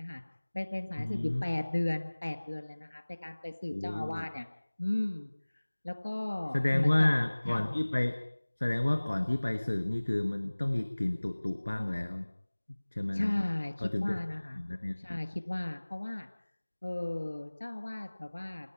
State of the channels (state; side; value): inverted; both; correlation -1.00